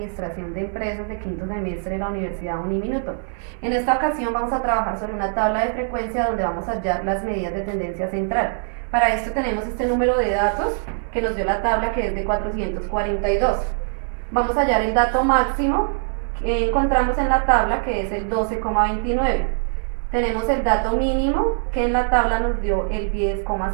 de Empresas de quinto semestre de la Universidad Uniminuto. En esta ocasión vamos a trabajar sobre una tabla de frecuencia donde vamos a hallar las medidas de tendencia central. Para esto tenemos este número de datos que nos dio la tabla, que es de 442. Vamos a hallar el dato máximo que encontramos en la tabla, que es el 12,29. Tenemos el dato mínimo, que en la tabla nos dio el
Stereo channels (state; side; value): silent; left; digital silence